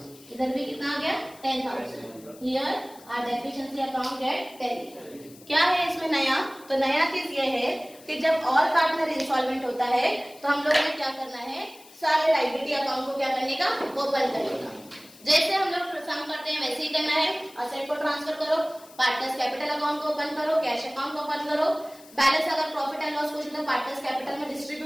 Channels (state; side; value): noise; left; hiss, 23 dB below the sound